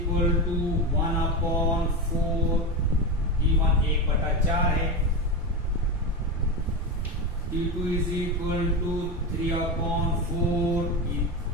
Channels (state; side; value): normal; both; correlation 0.18